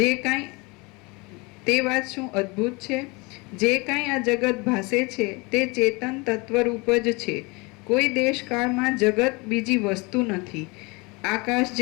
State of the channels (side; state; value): right; quieter; 26.8 dB